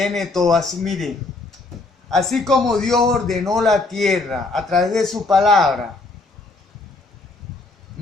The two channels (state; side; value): quieter; right; 3.4 dB